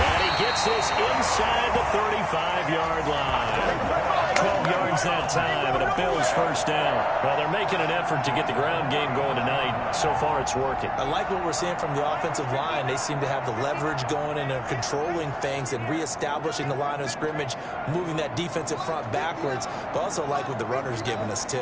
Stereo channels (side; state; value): both; identical; correlation 1.00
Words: he gets this inside the 35-yard line. 12 yards that time, and a Bills first down. Well, they're making an effort to get the ground game going tonight. So far, it's working. I like what we're seeing from the offensive line. They seem to have the leverage going and are controlling things and reestablishing the line of scrimmage, moving that defensive front backwards. But also like what the runner's giving us,